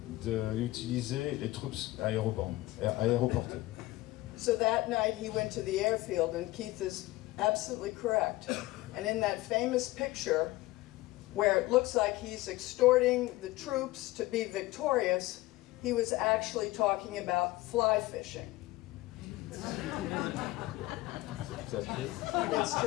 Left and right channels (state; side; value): quieter; right; 18.7 dB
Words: d'utiliser les troupes aéroportées. So that night he went to the airfield, and Keith is absolutely correct. And in that famous picture, where it looks like he's extorting the troops to be victorious, he was actually talking about fly fishing. It's